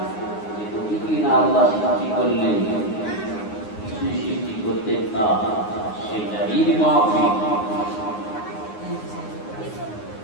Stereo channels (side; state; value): right; late; 9.6 ms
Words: কিনা আল্লাহ সৃষ্টি করলেন, কিছু সৃষ্টি করতেন না, সেটাই মাফিক।